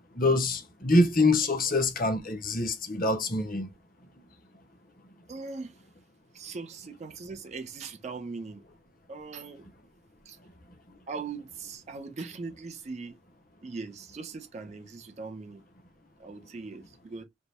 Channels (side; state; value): both; normal; correlation 0.56